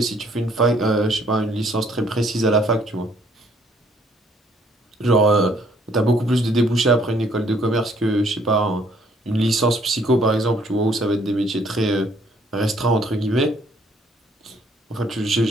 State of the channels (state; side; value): normal; both; correlation 0.64